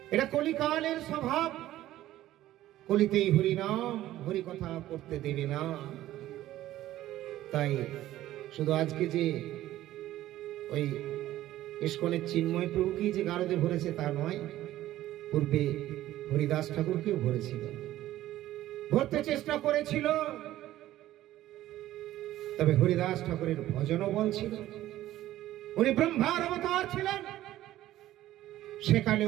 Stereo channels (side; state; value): left; quieter; 14.3 dB